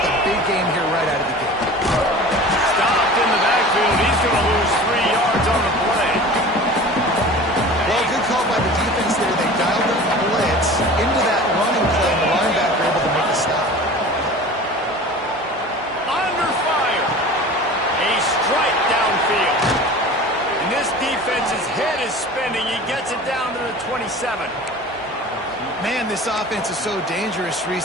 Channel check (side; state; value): both; normal; correlation 0.39